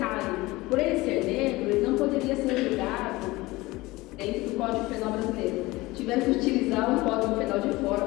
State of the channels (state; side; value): quieter; right; 20.6 dB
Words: por ele ser negro, ele não poderia ser julgado dentro do Código Penal brasileiro. Tiveram que utilizar um Código Penal de fora,